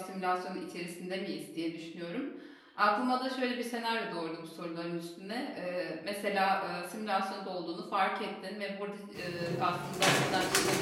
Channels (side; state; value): both; identical; correlation 1.00